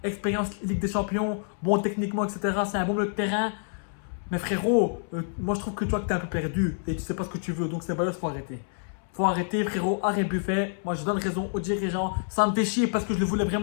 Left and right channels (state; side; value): silent; right; 60 dB below the other